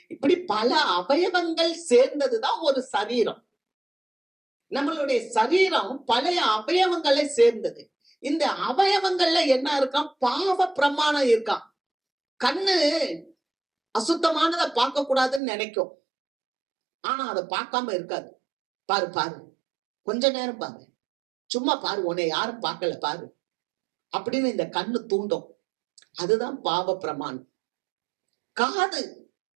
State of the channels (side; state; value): left; drops out; at 15.4 s